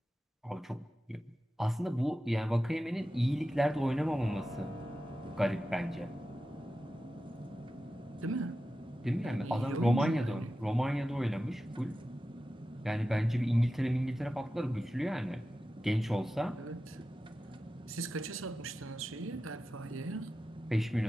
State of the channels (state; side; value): normal; both; correlation 0.93